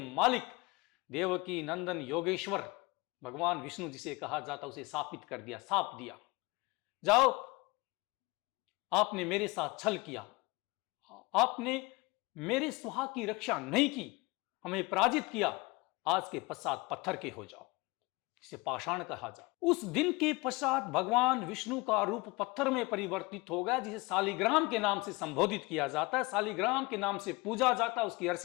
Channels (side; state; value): right; quieter; 24.5 dB